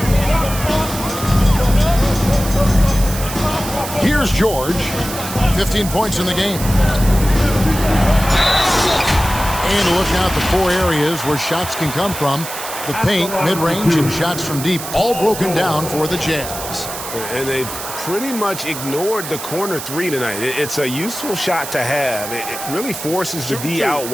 Here's George. 15 points in the game. And look out the 4 areas where shots can come from. The paint, mid-range, and shots from deep, all broken down for the Jazz. And they've pretty much ignored the corner 3 tonight. It's a useful shot to have. It really forces the D out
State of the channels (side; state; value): right; noise; hiss, 9 dB below the sound